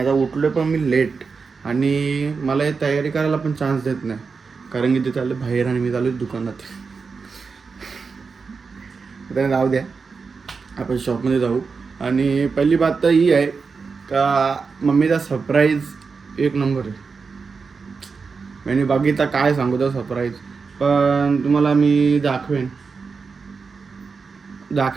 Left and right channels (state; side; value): quieter; left; 5.0 dB